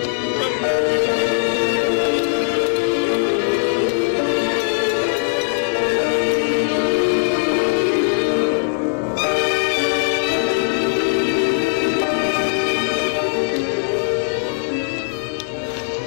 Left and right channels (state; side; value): silent; right; 66 dB below the other